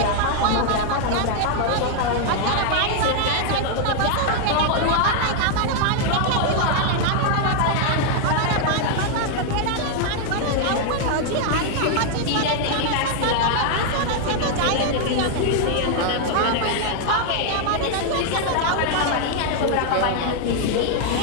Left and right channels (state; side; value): different; both; correlation 0.00